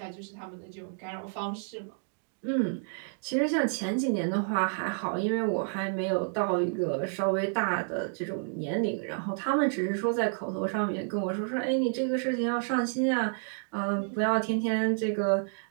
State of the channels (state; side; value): silent; left; digital silence